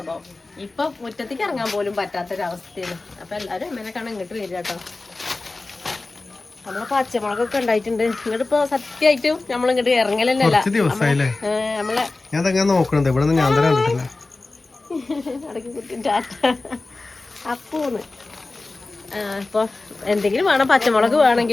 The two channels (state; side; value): quieter; right; 3.3 dB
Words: ഇപ്പൊ മുറ്റത്തേക്ക് ഇറങ്ങാൻ പോലും പറ്റാത്തൊരവസ്ഥയാണ്. അപ്പൊ എല്ലാരും അമ്മേനെ കാണാൻ ഇങ്ങോട്ട് വരിക കേട്ടോ. നമ്മളെ പച്ചമുളകൊക്കെ ഉണ്ടായിട്ടുണ്ട്. ഇങ്ങോട്ട് ഇപ്പൊ സത്യമായിട്ടും നമ്മളിങ്ങോട്ട് ഇറങ്ങലല്ല. അപ്പോന്ന് ഇപ്പൊ എന്തെങ്കിലും വേണം. പച്ചമുളക്